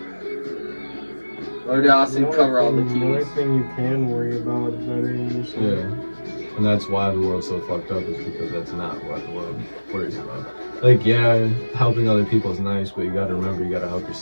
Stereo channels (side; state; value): both; inverted; correlation -1.00